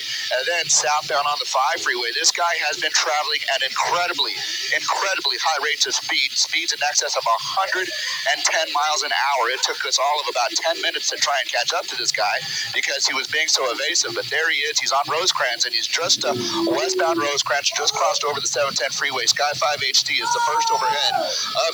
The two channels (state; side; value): noise; right; hiss, 21 dB below the sound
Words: and then southbound on the 5 freeway. This guy has been traveling at incredibly high rates of speeds in excess of 110 miles an hour. It took us all of about 10 minutes to try and catch up to this guy because he was being so evasive. But there he is. He's on Rosecrans, and he's just westbound Rosecrans, just crossed over the 710 freeway. Sky 5 HD is the first overhead of